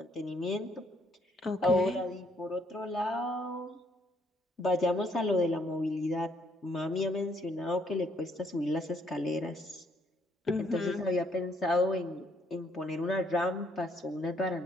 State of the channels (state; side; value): normal; both; correlation 0.68